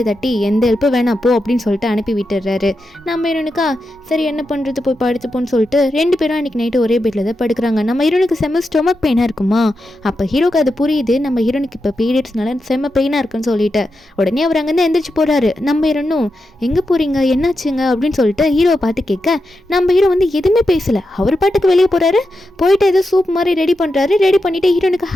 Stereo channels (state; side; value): normal; both; correlation 0.88